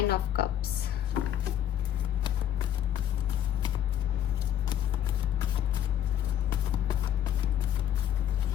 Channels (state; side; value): quieter; right; 10.7 dB